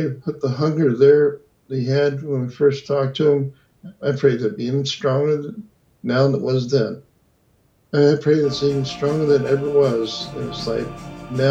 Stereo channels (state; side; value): identical; both; correlation 1.00